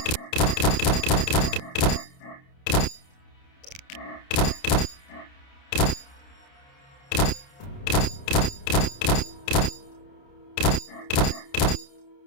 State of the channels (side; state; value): right; late; 29 ms